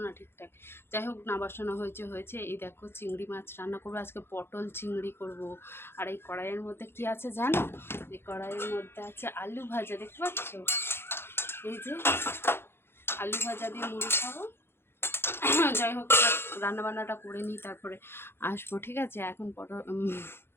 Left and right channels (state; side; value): late; right; 0.11 ms